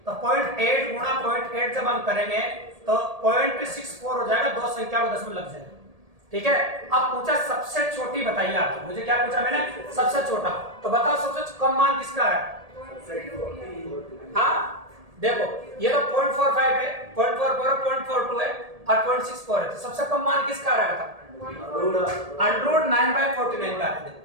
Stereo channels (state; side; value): late; left; 1.8 ms